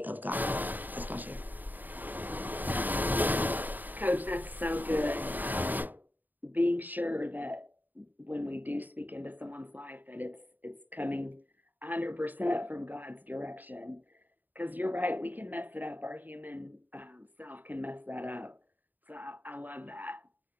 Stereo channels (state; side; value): late; left; 0.087 ms